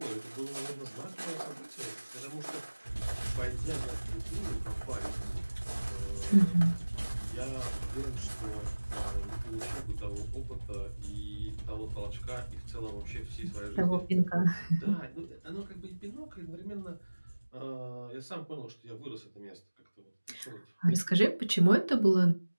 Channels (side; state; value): both; inverted; correlation -1.00